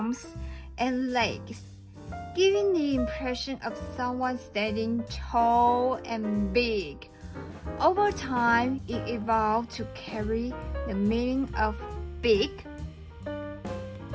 and legs, giving the impression of someone standing tall and big. Over time, it evolved to carry the meaning of big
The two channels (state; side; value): identical; both; correlation 1.00